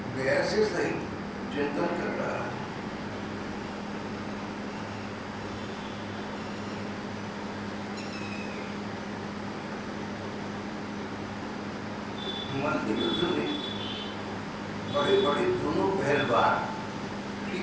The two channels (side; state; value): both; identical; correlation 1.00